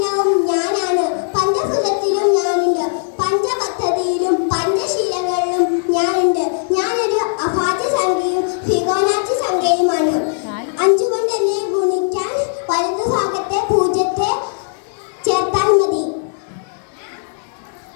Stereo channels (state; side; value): silent; right; digital silence